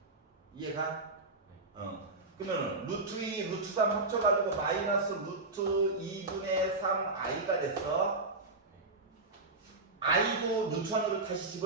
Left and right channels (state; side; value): quieter; left; 3.3 dB